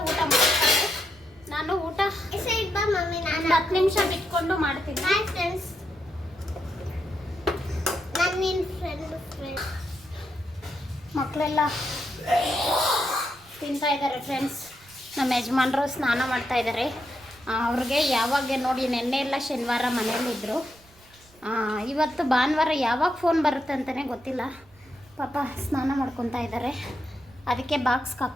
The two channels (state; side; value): noise; right; rumble, 28 dB below the sound